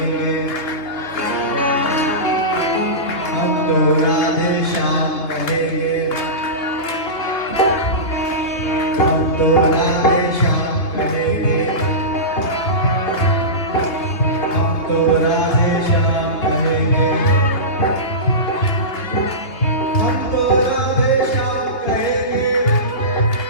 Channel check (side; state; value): right; late; 3.4 ms